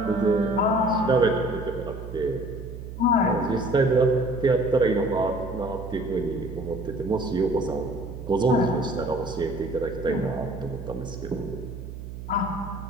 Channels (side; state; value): right; noise; hum, 10 dB below the sound